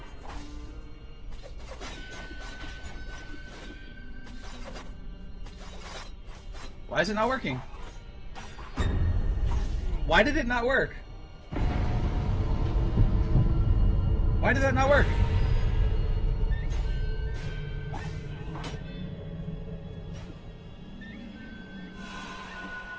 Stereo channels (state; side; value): identical; both; correlation 1.00